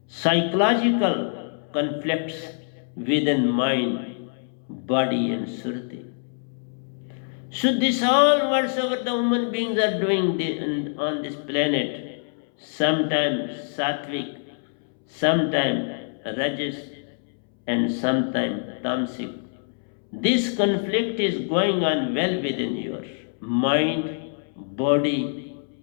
psychological conflicts within mind, body, and surti. So this all whatsoever the human beings are doing on this planet, sometimes sattvic, sometimes rajas, and sometimes tamasic. This conflict is going on well within your mind, body,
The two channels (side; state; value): right; silent; 62 dB below the other